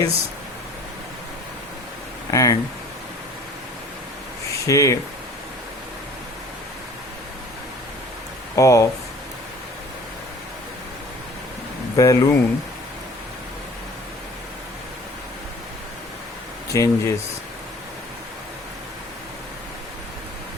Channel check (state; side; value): normal; both; correlation 0.48